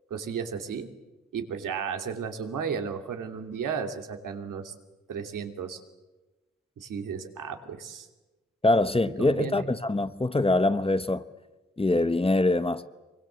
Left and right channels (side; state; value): both; normal; correlation 0.66